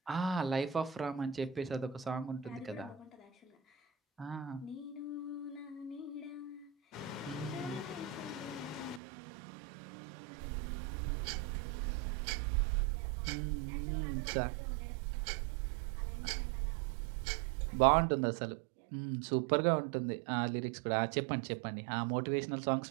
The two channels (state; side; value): drops out; left; at 9.0 s